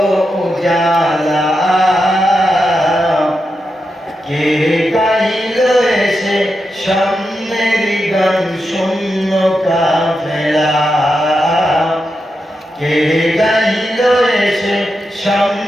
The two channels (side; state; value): both; normal; correlation 0.87